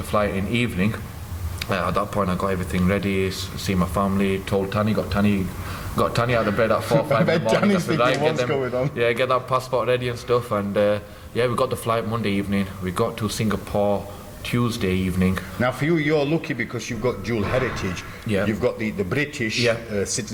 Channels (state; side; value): identical; both; correlation 1.00